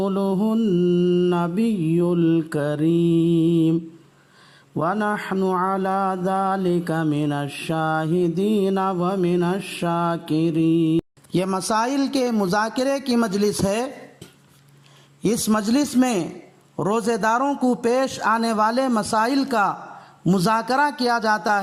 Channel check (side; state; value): both; identical; correlation 1.00